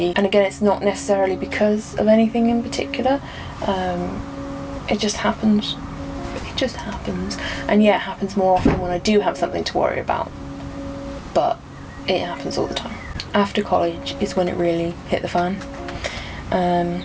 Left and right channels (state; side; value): identical; both; correlation 1.00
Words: and again, it's not necessarily because of anything in particular. It just happens. And yeah, it happens more often when I do have something to worry about, but it happens all the time. After college is when it really hit the fan.